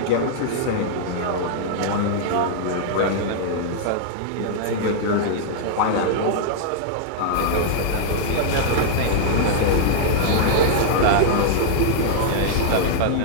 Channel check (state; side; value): different; both; correlation -0.01